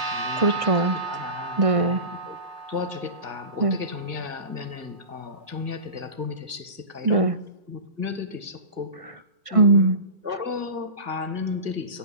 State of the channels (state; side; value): late; left; 1.6 ms